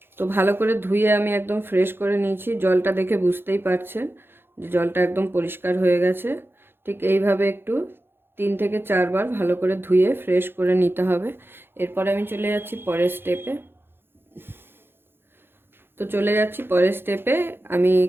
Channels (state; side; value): late; left; 0.10 ms